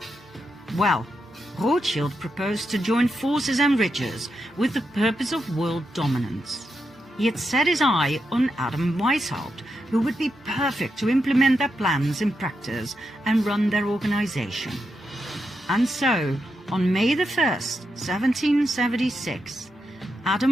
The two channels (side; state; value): both; normal; correlation 0.85